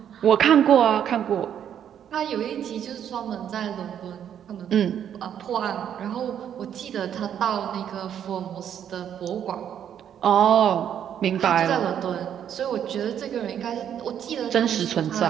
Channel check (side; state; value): left; quieter; 9.3 dB